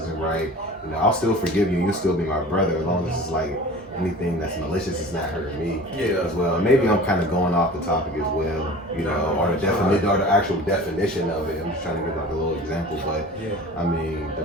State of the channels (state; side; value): normal; both; correlation 0.40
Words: right. You know, I'll still forgive you, you'll still be my brother, as long as it's like anything that's malicious is not hurting me as well. And maybe I'm kind of going off the topic as well, you know, or the definition or the actual definition of it. I'm just trying to give like a little example, but I mean, the